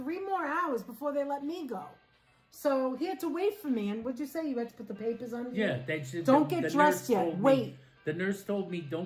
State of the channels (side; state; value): both; identical; correlation 1.00